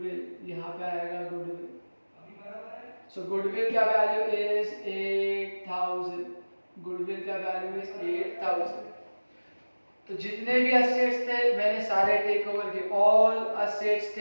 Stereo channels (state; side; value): inverted; both; correlation -1.00